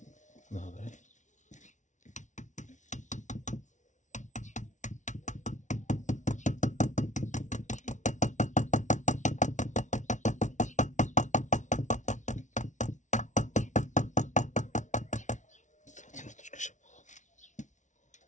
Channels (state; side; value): late; right; 0.36 ms